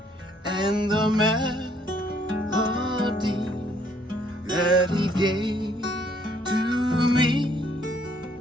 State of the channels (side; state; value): both; normal; correlation 0.65